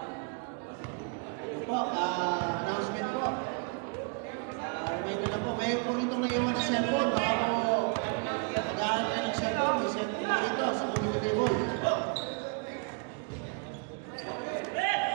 Po, announcement po. Reminder na po, mayroon po rito nag-iwan ng cellphone. Baka po nag-aaral ka ng cellphone, may cellphone po rito sa community table.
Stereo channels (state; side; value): quieter; left; 36.3 dB